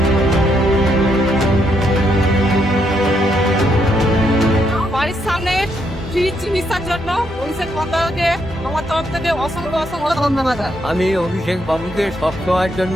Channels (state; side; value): normal; both; correlation 0.76